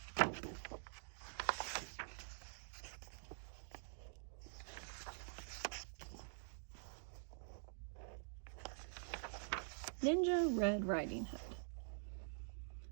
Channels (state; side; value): silent; left; digital silence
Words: Ninja Red Riding Hood.